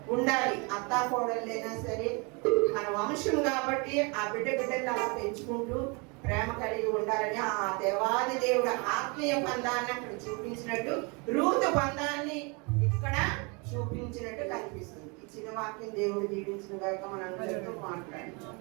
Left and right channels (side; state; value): left; quieter; 30.8 dB